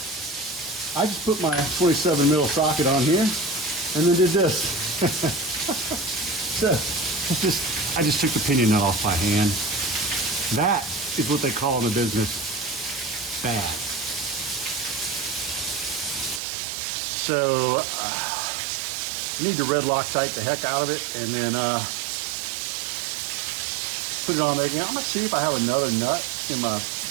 I just put my 27 mil socket on here and then did this. So I just took the pinion nut off by hand. That is what they call in the business bad. So you need to red Loctite the heck out of it and then put it on there again. I'm gonna see if I have another nut in my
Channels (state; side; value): drops out; left; at 16.4 s